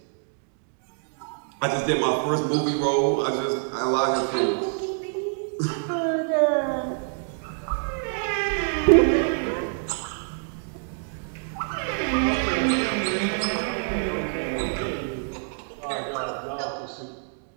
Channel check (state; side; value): silent; left; digital silence